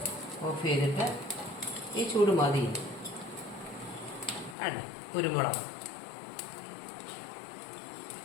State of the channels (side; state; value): right; drops out; at 4.5 s